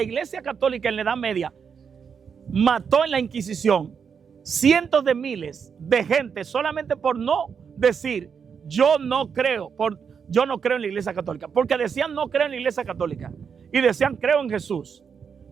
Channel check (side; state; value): left; quieter; 6.6 dB